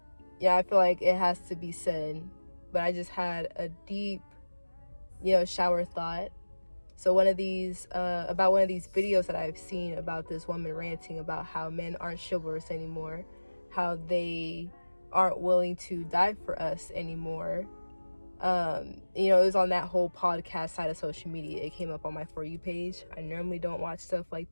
yeah, I feel like it has to be said. But I just had a deep, shower thought. So about one of these videos that I've seen about this woman ranting about how men aren't chivalrous anymore, how they aren't willing to die for us anymore. It was on that whole podcast side of social media. It came up on my For You page. I normally don't watch stuff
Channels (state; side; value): inverted; both; correlation -1.00